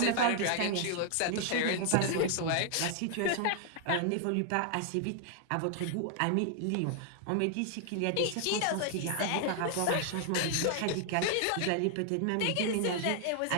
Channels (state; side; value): different; both; correlation 0.00